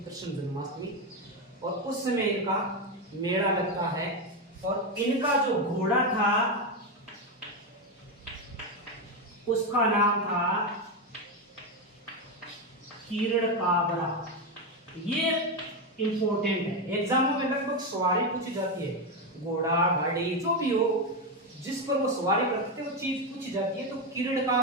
कृष्ण जन्माष्टमी। और उस समय इनका मेला लगता है। और इनका जो घोड़ा था उसका नाम था किरण काबरा। ये इंपॉर्टेंट है, एग्जामों में लगभग सवारी पूछी जाती है, घोड़ा गाड़ी जो भी हो जिस पर वो सवारी करते वो चीज पूछी जाती है। तो किरण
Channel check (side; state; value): both; normal; correlation 0.10